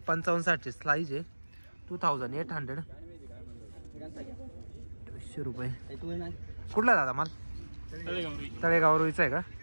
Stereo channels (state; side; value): inverted; both; correlation -1.00